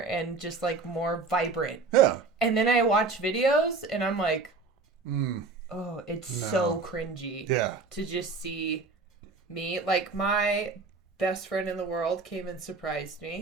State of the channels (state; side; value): quieter; left; 4.1 dB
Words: and just like more vibrant. Yeah. And then I watch videos and I'm like, Mm. oh, it's so cringy Yeah. to just see me. Like my best friend in the world came and surprised